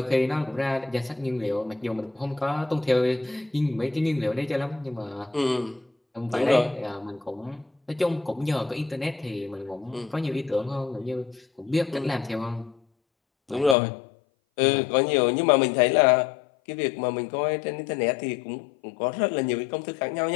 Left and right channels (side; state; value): right; drops out; at 13.8 s